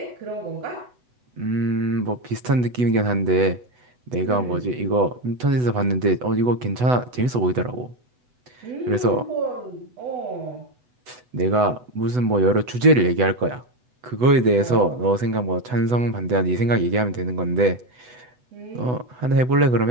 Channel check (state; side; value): late; left; 8.0 ms